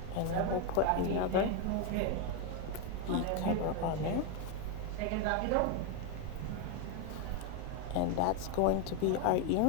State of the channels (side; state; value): both; different; correlation 0.01